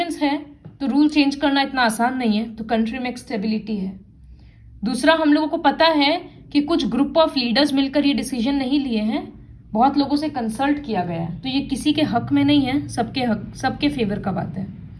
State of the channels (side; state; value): both; identical; correlation 1.00